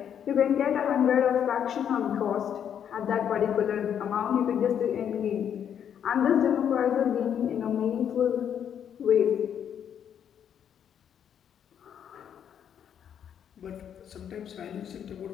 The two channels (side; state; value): right; quieter; 8.8 dB